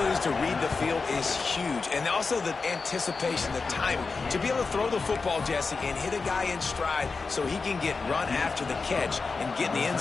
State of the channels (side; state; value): right; quieter; 4.4 dB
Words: to read the field is huge, and also the anticipation, the timing. To be able to throw the football, Jesse, and hit a guy in stride so he can get run after the catch and get in the end